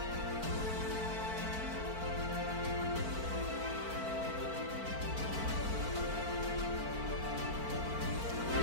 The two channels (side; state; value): left; late; 4.5 ms